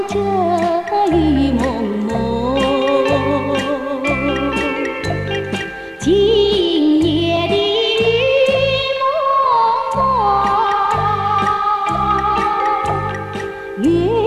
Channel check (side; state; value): both; identical; correlation 1.00